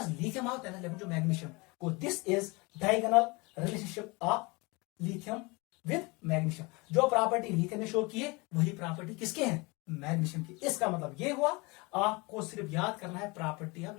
लिथियम आता है ना, जो मैग्नीशियम को, this is diagonal relationship of lithium with magnesium. जो प्रॉपर्टी लिथियम ने शो की है वही प्रॉपर्टी किसके हैं? मैग्नीशियम की. इसका मतलब ये हुआ आपको सिर्फ याद करना है प्रॉपर्टी ऑफ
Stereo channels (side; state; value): right; quieter; 26.4 dB